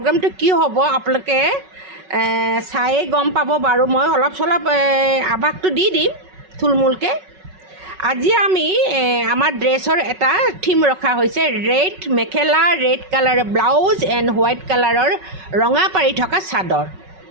কি হ'ব আপোনালোকে চায়ে গম পাব বাৰু। মই অলপ চলপ আভাসটো দি দিম থুলমূলকৈ। আজি আমি আমাৰ ড্ৰেছৰ এটা থিম ৰখা হৈছে, ৰেড মেখেলা, ৰেড কালাৰৰ ব্লাউজ এণ্ড হোৱাইট কালাৰৰ ৰঙা পাৰি থকা চাদৰ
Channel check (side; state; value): left; late; 5.3 ms